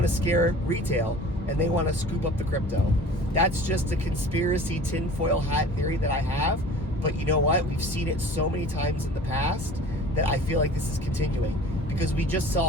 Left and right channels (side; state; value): both; normal; correlation 0.43